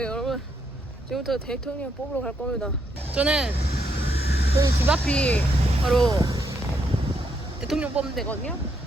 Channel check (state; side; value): normal; both; correlation 0.77